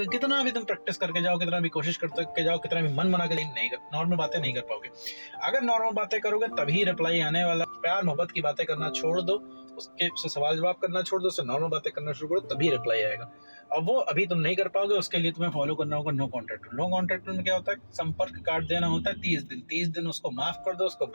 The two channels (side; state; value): both; inverted; correlation -1.00